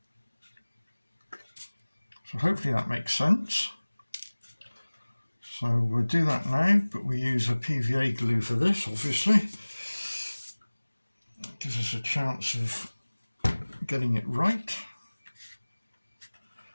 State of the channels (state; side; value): inverted; both; correlation -1.00